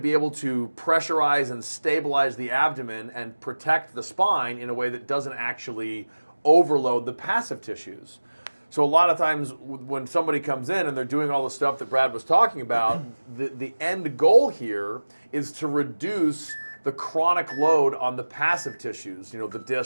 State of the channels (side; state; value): both; inverted; correlation -1.00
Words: able to pressurize and stabilize the abdomen and protect the spine in a way that doesn't actually overload the passive tissues. So a lot of times when somebody comes in and they're doing all the stuff that Brad was talking about, the end goal here is to reduce the chronic load on the passive tissues, the